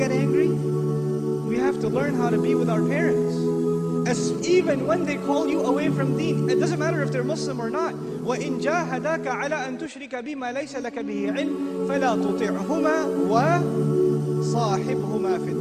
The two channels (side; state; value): both; identical; correlation 1.00